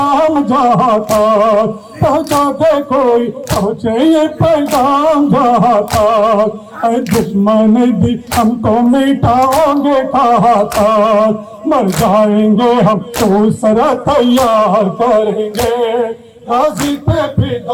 जहाँ तक, पहुँचा दे कोई पहुँचे ये पैगाम जहाँ तक। दुश्मन भी हमको मिटाओगे कहाँ तक, मर जाएंगे हम दूसरा तैयार करेंगे। गाजी पे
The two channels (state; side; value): identical; both; correlation 1.00